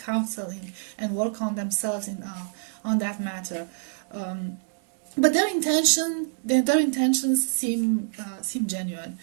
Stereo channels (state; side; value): silent; left; 61 dB below the other